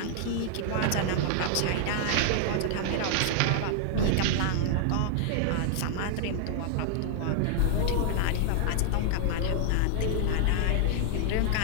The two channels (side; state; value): both; different; correlation -0.01